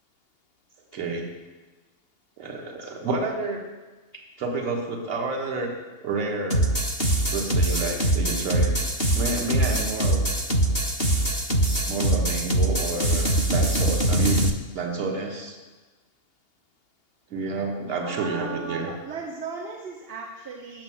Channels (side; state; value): right; late; 2.8 ms